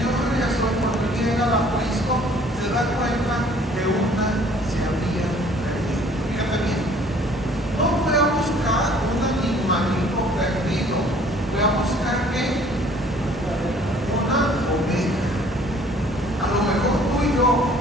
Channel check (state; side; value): normal; both; correlation 0.56